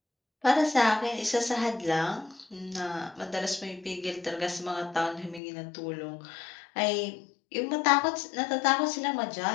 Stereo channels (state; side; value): drops out; right; at 5.4 s